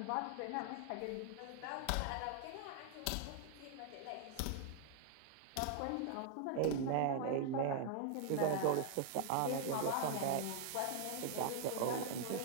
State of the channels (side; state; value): both; different; correlation 0.00